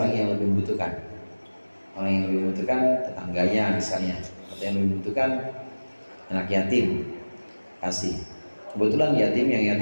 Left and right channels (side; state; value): both; inverted; correlation -1.00